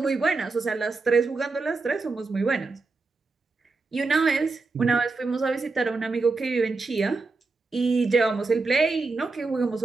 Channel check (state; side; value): quieter; left; 3.9 dB